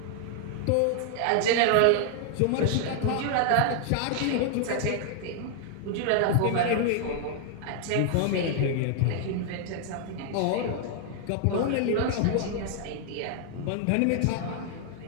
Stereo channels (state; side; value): different; both; correlation 0.00